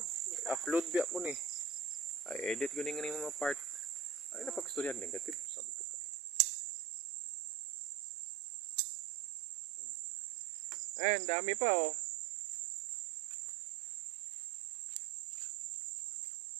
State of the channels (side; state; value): left; drops out; at 5.5 s